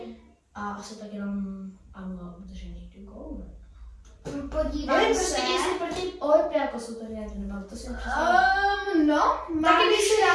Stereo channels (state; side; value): identical; both; correlation 1.00